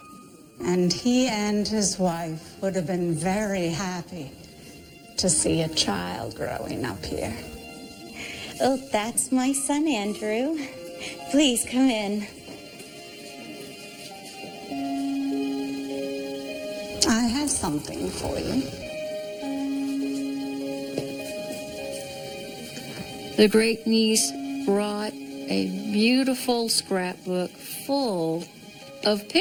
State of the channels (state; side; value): identical; both; correlation 1.00